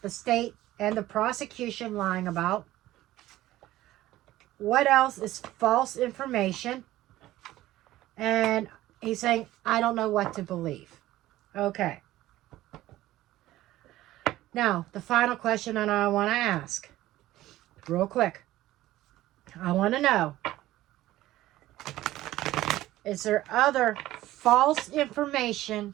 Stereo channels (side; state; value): left; quieter; 15.6 dB